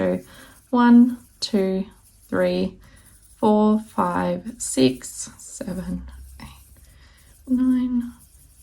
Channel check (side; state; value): both; identical; correlation 1.00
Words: 1, 2, 3, 4, 5, 6, 7, 8, 9,